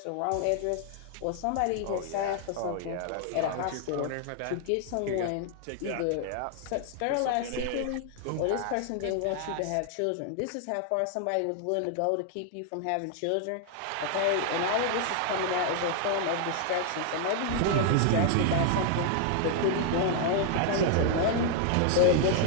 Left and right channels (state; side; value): different; both; correlation 0.00